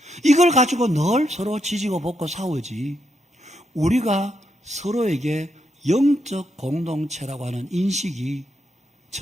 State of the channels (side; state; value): both; normal; correlation 0.80